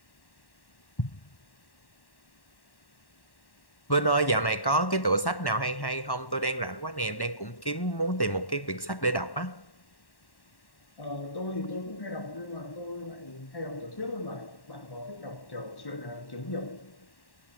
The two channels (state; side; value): late; right; 1.1 ms